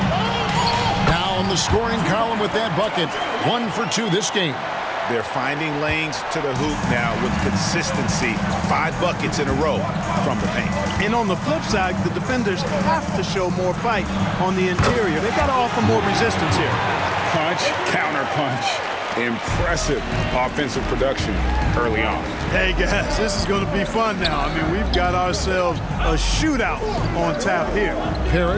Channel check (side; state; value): both; identical; correlation 1.00